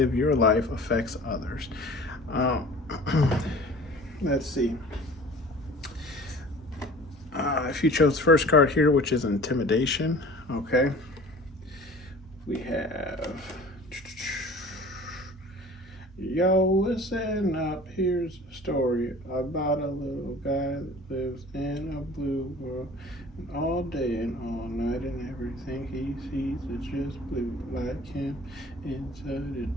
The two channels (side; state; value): both; normal; correlation 0.44